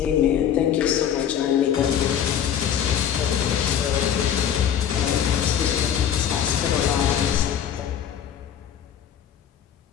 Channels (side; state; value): right; quieter; 9.2 dB